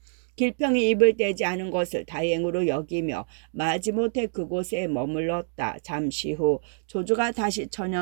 길평이 입을 떼지 않은 것을 다행으로 여기며 마지못해 그곳에 머물렀다. 잠시 후 조조가 다시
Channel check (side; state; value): left; silent; digital silence